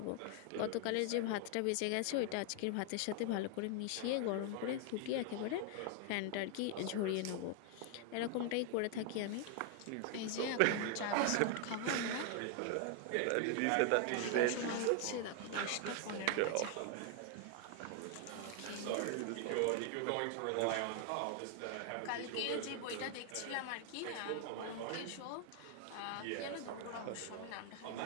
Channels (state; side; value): different; both; correlation 0.00